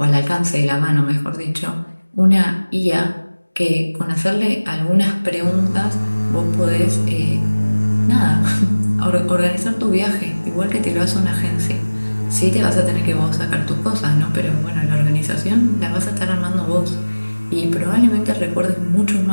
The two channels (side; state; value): both; inverted; correlation -1.00